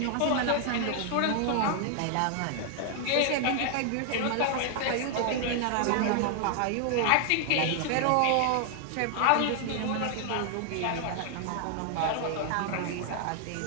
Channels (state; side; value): different; both; correlation 0.00